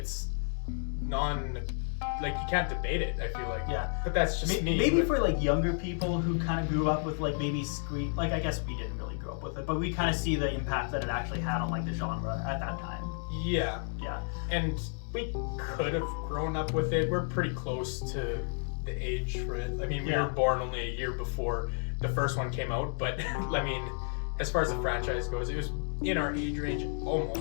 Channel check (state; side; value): silent; right; 57 dB below the other